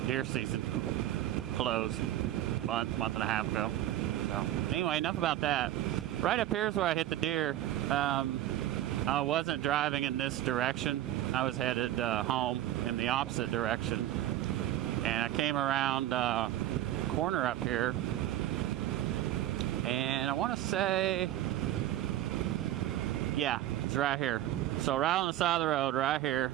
deer season closed a month and a half ago. So anyway, enough about that. Right up here is where I hit the deer. I wasn't driving in this direction. I was headed home in the opposite direction. And I came around a corner up here. And I want to say, yeah, it's right here. So right on the side of the road, right here.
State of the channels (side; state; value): left; quieter; 13.5 dB